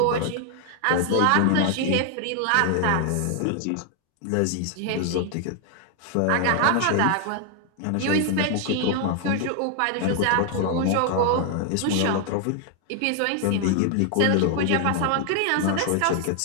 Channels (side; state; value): both; different; correlation 0.00